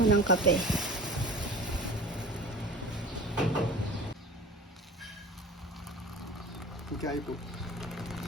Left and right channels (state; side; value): normal; both; correlation 0.38